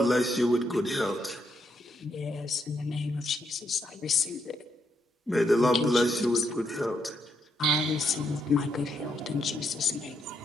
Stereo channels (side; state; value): both; normal; correlation 0.78